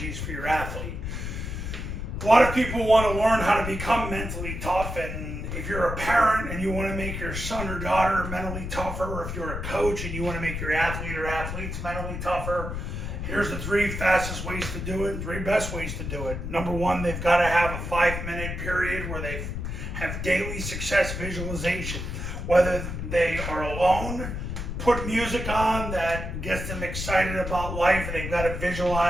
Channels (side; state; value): left; noise; rumble, 5 dB below the sound